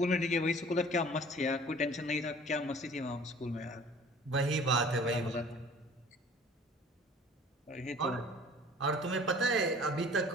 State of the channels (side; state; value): both; normal; correlation 0.49